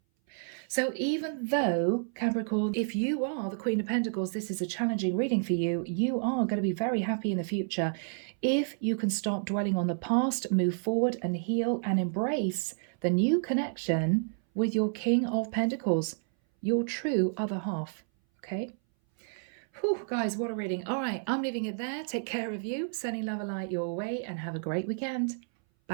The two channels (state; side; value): silent; left; 58 dB below the other